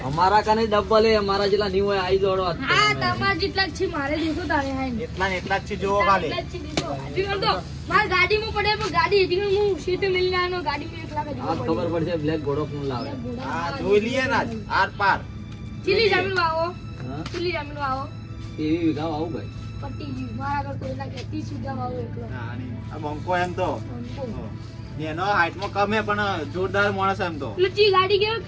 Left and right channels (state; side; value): identical; both; correlation 1.00